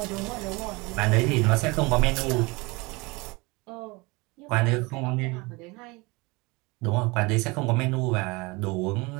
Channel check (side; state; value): left; quieter; 25.4 dB